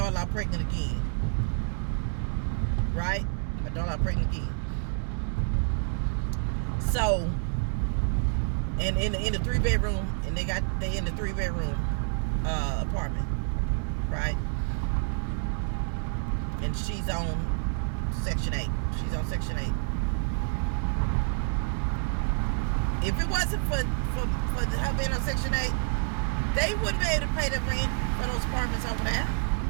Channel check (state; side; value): silent; left; 56 dB below the other